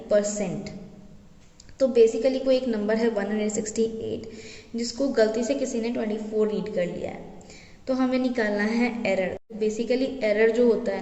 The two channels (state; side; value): identical; both; correlation 1.00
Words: percent. तो बेसिकली कोई एक नंबर है 168 जिसको गलती से किसी ने 24 रीड कर लिया है, तो हमें निकालना है एरर। बेसिकली एरर जो होता